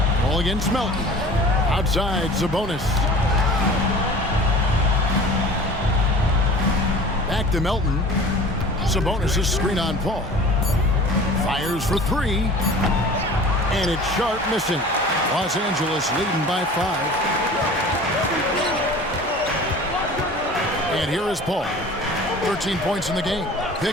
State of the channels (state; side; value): normal; both; correlation 0.42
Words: Ball against Melton. Outside, Sabonis. Back to Melton. Sabonis' screen on Paul. Fires for three. And it's sharp missing. Los Angeles leading by 5. And here is Paul. 13 points in the game.